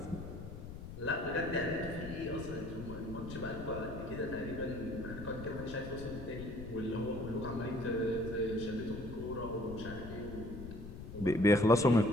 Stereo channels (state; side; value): noise; left; rumble, 10 dB below the sound